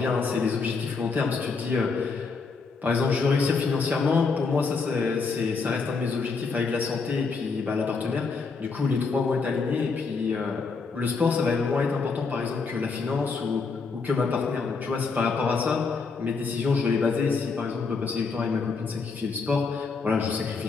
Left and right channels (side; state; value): right; quieter; 4.6 dB